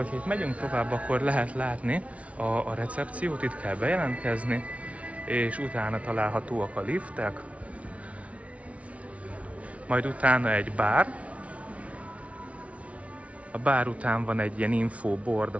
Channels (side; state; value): left; late; 0.064 ms